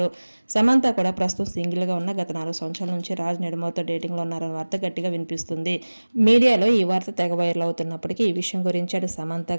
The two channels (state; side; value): inverted; both; correlation -1.00